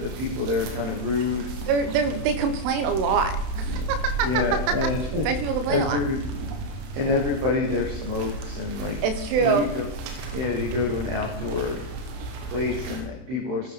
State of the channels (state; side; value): late; left; 32 ms